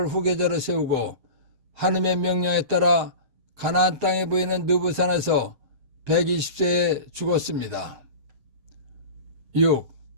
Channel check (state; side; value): late; left; 7.6 ms